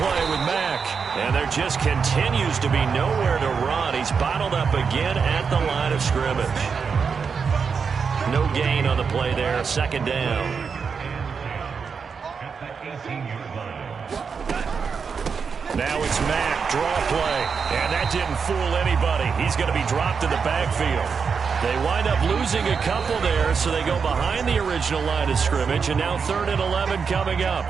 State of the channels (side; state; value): left; quieter; 5.8 dB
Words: with Mack. And there just continues to be nowhere to run. He's bottled up again at the line of scrimmage. No gain on the play there. 2nd down. Now it's Mack, draw play, and that didn't fool anybody. He's going to be dropped in the backfield. They wind up losing a couple there, so they go behind the original line of scrimmage, and now 3rd and 11 coming up.